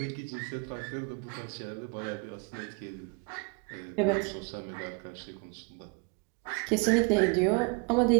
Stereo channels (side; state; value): left; quieter; 32.0 dB